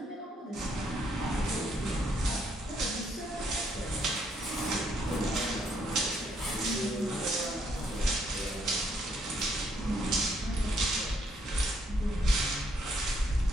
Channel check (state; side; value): normal; both; correlation 0.72